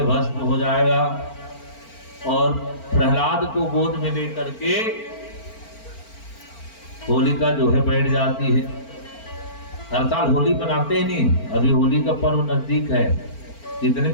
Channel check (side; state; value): right; late; 4.4 ms